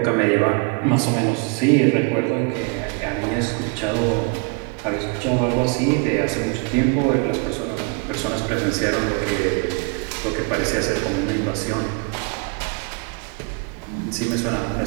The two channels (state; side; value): quieter; left; 32.9 dB